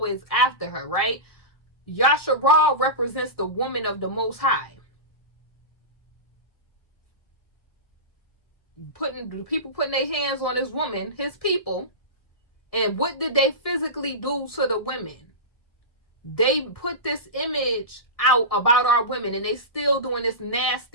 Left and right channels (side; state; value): right; late; 1.7 ms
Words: after her, right? Yasharal represents the woman of the Most High. People putting their hands on this woman, his people. And what did they physically do to the women? They put this image out about our women, and they still doing this